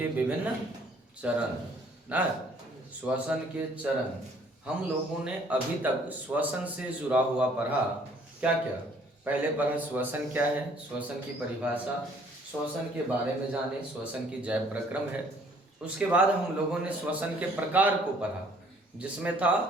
विभिन्न चरण ना, श्वसन के चरण। हम लोगों ने अभी तक श्वसन से जुड़ा हुआ पढ़ा। क्या क्या पहले पढ़ा? श्वसन क्या है, श्वसन की परिभाषा, श्वसन के बारे में जाने, श्वसन की जैव प्रक्रम है। उसके बाद हम लोगों ने श्वसन के प्रकार को पढ़ा, जिसमें था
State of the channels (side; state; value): both; normal; correlation 0.60